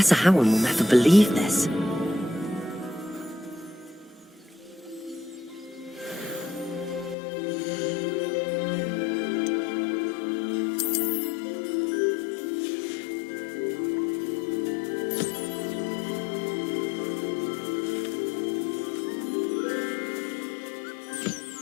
Howard will never believe this.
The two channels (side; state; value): right; drops out; at 7.2 s